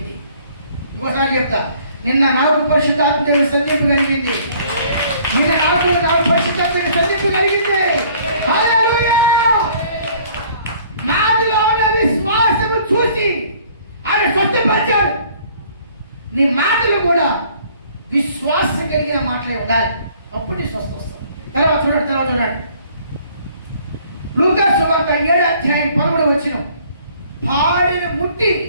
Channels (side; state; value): both; inverted; correlation -0.57